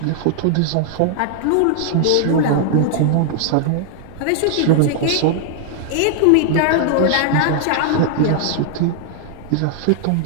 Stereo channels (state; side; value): different; both; correlation -0.01